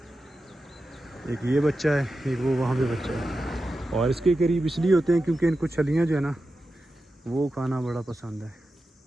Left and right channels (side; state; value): both; normal; correlation 0.91